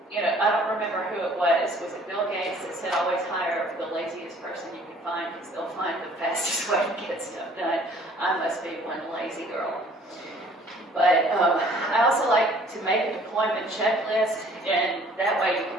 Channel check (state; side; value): normal; both; correlation 0.55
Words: You know, I don't remember who it was. Was it Bill Gates that said always hire the laziest person you can find because they'll find the fastest way to get stuff done? I must be one lazy girl. But I also like to make a deployment checklist, and that way you